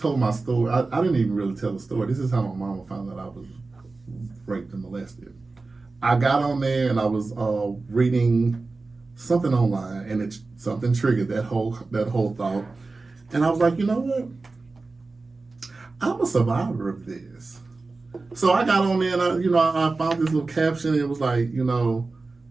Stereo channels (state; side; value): quieter; left; 3.7 dB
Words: my story, I didn't even really tell the story. This is how my mama found out I was raped and molested. I got on there and I was reading something online, and something triggered that whole thought. And I was like, you know what? I'm a survivor of this. So I got on there and I found this little caption. And it was like,